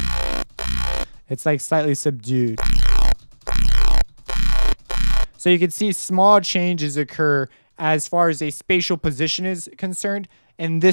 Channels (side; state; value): both; inverted; correlation -1.00